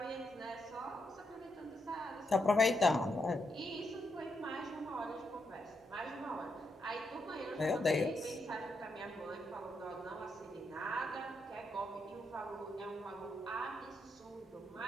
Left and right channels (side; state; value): both; normal; correlation 0.81